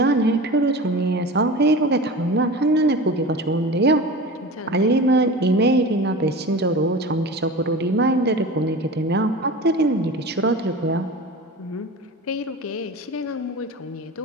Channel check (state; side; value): normal; both; correlation 0.33